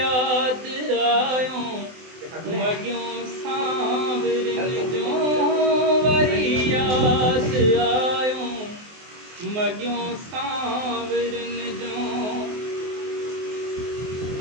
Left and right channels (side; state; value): left; late; 24 ms